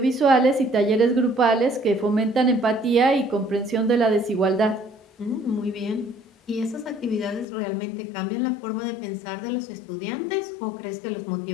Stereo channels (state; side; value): drops out; right; at 7.5 s